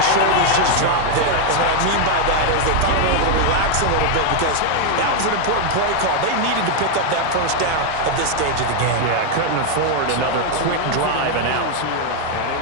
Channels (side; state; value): both; different; correlation 0.01